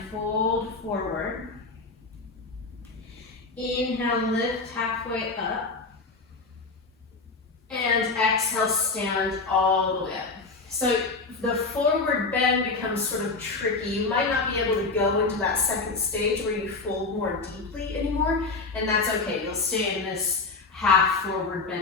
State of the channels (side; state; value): right; quieter; 3.9 dB